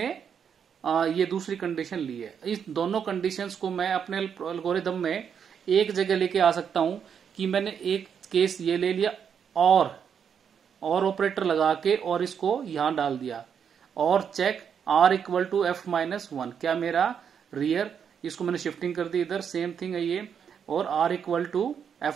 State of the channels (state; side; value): quieter; left; 7.5 dB